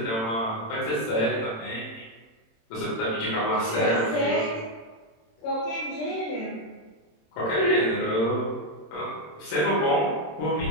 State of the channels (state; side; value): late; right; 27 ms